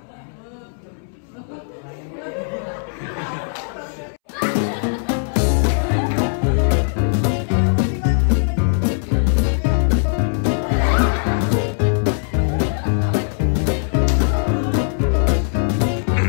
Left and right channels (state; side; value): silent; right; 66 dB below the other